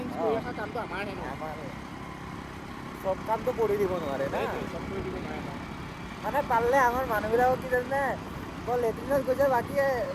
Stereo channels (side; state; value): both; identical; correlation 1.00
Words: কৰি ৰখা কামটো আমাৰহে ন, চব কামটো কৰি দিব নোৱাৰে না, চব কৰি দিব নোৱাৰে ন। মানে পাৰিলে আমাৰ মানুহবিলাকক কি জানে, লেট্ৰিনত গৈছে,